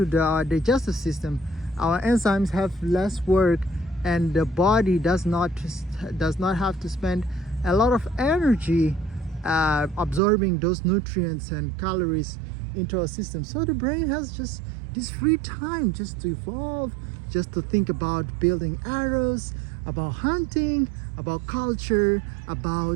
the digestive system, our enzymes have less work, and the body does not have to spend a lot of energy absorbing those nutrients and calories into our system. So the brain has just this free time just to evolve, just to think about building arrows, about hunting, about culture,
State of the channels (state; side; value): drops out; left; at 10.2 s